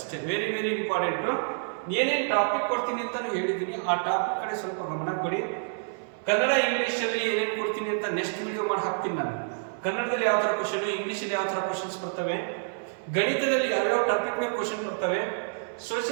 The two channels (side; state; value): left; silent; 59 dB below the other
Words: Very very important. ಏನೇನು ಟಾಪಿಕ್ ಕೊಡ್ತೀನಿ ಅಂತ ಹೇಳಿದ್ದೀನಿ, ಆ ಟಾಪಿಕ್ ಕಡೆ ಸ್ವಲ್ಪ ಗಮನ ಕೊಡಿ. ಕನ್ನಡ ಇಂಗ್ಲೀಷಲ್ಲಿ ಏನೇನು ಕೊಡ್ತೀನಿ ಅಂತ ನೆಕ್ಸ್ಟ್ ವಿಡಿಯೋ ಮಾಡಿ ಹಾಕ್ತೀನಿ ನಾನು. ಕನ್ನಡದಲ್ಲಿ ಯಾವ ಥರ ಕ್ವಶನ್, ಇಂಗ್ಲೀಷಲ್ಲಿ ಯಾವ ಥರ ಕ್ವಶನ್ಸ್ ಬರ್ತವೆ, ಗಣಿತದಲ್ಲಿ ಯಾವ್ಯಾವ ಟಾಪಿಕ್ ಮೇಲೆ ಕ್ವಶನ್ ಬರ್ತವೆ,